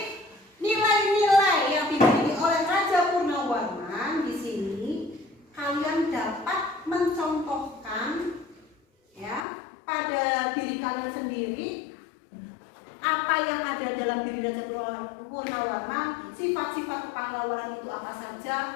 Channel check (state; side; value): drops out; right; at 9.5 s